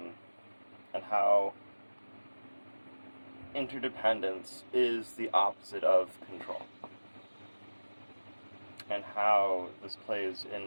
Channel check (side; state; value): both; inverted; correlation -1.00